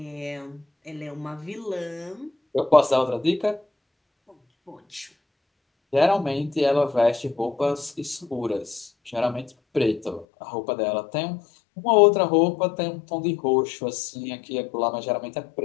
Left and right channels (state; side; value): drops out; right; at 10.2 s